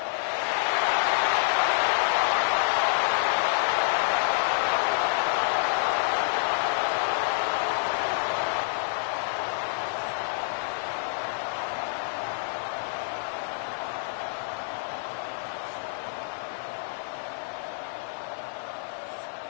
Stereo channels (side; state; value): right; silent; digital silence